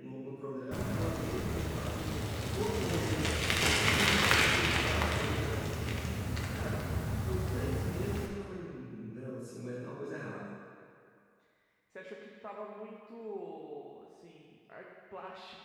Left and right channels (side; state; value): both; identical; correlation 1.00